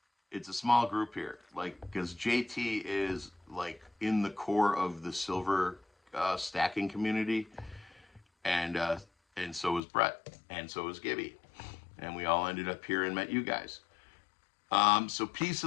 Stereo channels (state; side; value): drops out; right; at 9.8 s